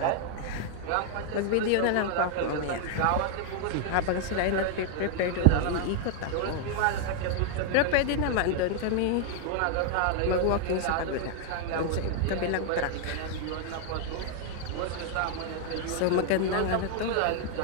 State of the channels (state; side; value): different; both; correlation 0.00